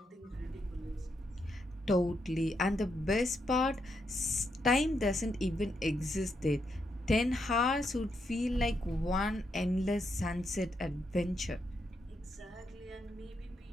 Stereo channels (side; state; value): both; normal; correlation 0.80